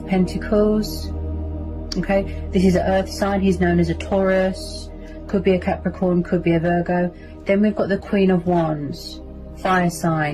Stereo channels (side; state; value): both; identical; correlation 1.00